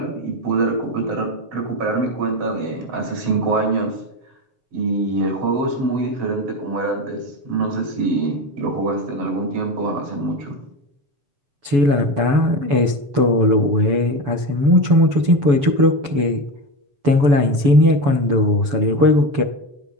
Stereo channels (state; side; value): late; left; 7.1 ms